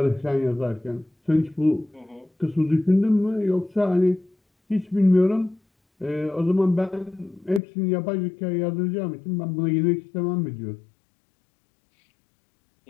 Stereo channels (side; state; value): right; drops out; at 7.6 s